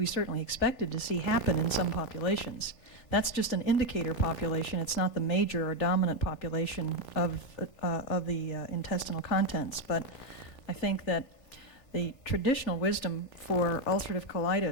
certainly expected to see happen in some populations. That's just an indicator population. It's not the major or dominant population of the intestinal contents. But I think that the traditional wisdom for ulcerative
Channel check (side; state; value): right; late; 3.5 ms